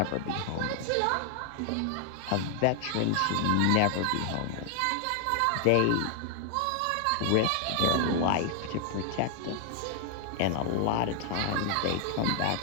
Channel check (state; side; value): different; both; correlation 0.00